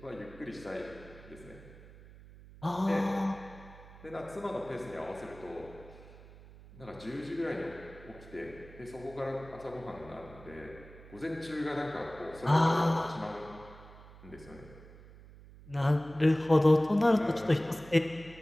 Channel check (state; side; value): noise; right; hum, 19 dB below the sound